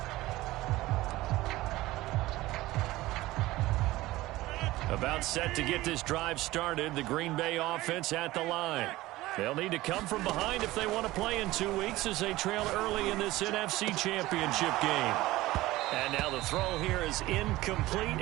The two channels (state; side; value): quieter; left; 17.9 dB